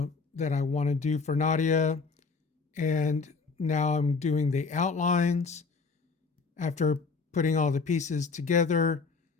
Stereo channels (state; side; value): quieter; right; 4.6 dB